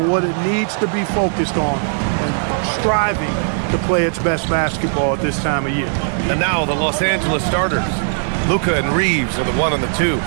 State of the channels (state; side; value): silent; left; digital silence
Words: what it needs to be focused on and striving to play its best basketball at this time of year. And now the Los Angeles starters. Luka and Reeves are the 1 and the 2.